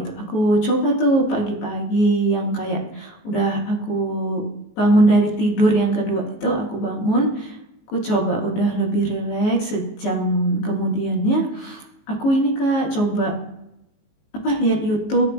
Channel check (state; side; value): late; right; 19 ms